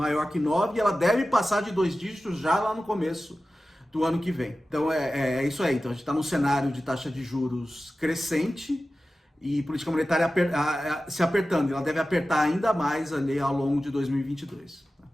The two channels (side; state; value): both; normal; correlation 0.95